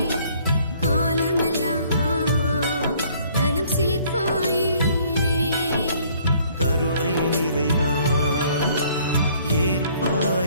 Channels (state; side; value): inverted; both; correlation -0.60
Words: காலமெல்லாம் நலம் சேர்ப்பாயே. கருணை நிறைவா